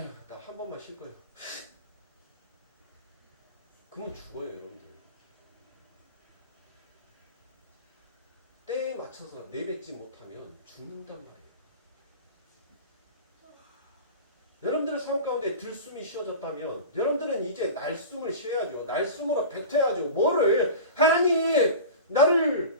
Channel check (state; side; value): inverted; both; correlation -0.33